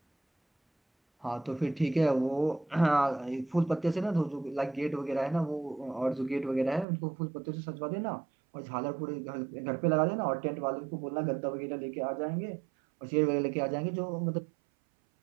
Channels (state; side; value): drops out; left; at 6.9 s